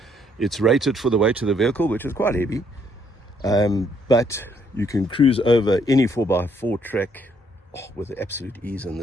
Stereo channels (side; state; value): both; normal; correlation 0.69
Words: It's rated for the weight of the vehicle, which is quite heavy. But you can cruise over any 4x4 track with absolute ease in